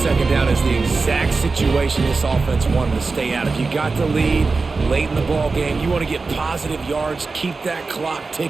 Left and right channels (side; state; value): left; quieter; 4.1 dB